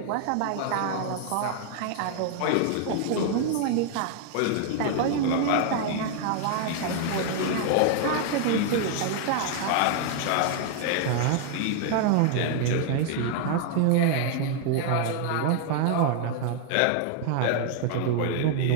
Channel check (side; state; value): both; different; correlation 0.00